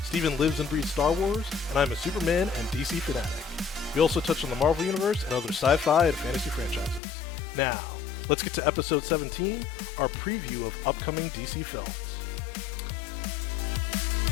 Steven lives and breathes Star Wars, and I'm a Superman and DC fanatic. We also touch on the Marvel Universe and other sci-fi and fantasy franchises. Now, let's get to episode 17, our preview of upcoming DC films.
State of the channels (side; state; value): right; drops out; at 7.0 s